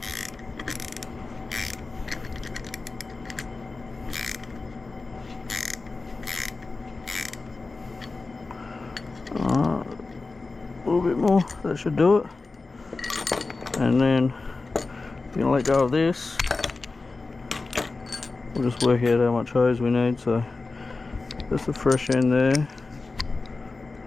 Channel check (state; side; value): quieter; right; 3.7 dB